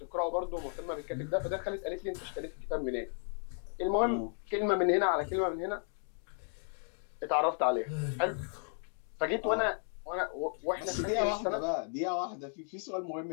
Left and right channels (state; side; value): silent; right; 55 dB below the other